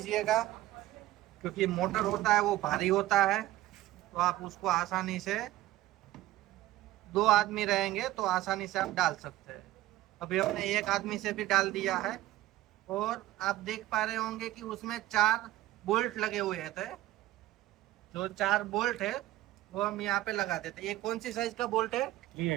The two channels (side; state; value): left; quieter; 15.7 dB